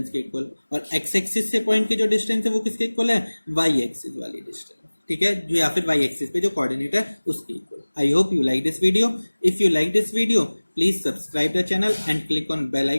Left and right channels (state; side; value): inverted; both; correlation -1.00